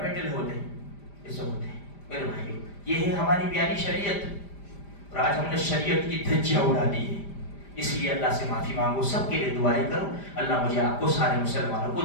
ہوتے ہیں، ایسے ہوتے ہیں۔ میرے بھائیو، یہ ہے ہماری پیاری شریعت، اور آج ہم نے شریعت کی دھجیاں اڑا دی ہے۔ اس لیے اللہ سے معافی مانگو، سب کے لیے دعائیں کرو، اللہ مجھے آپ کو سارے مسلمانوں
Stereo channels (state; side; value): late; right; 5.0 ms